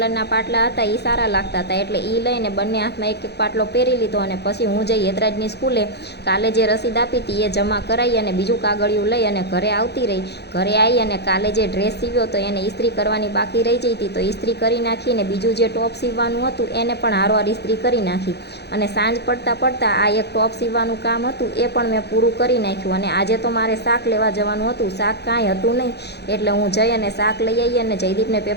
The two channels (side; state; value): right; late; 0.48 ms